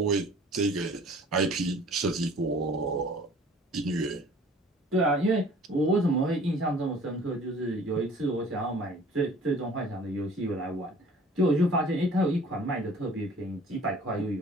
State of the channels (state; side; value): normal; both; correlation 0.50